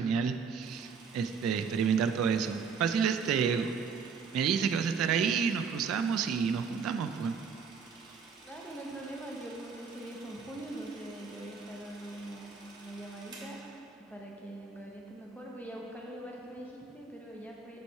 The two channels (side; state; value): left; quieter; 6.0 dB